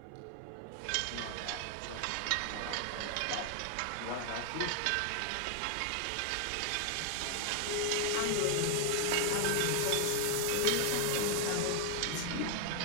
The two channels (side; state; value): both; different; correlation 0.00